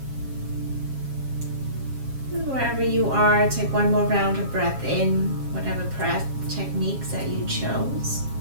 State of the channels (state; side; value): late; left; 7.4 ms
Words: And wherever you are, take one more round of breath in, whatever breath techniques that you chose.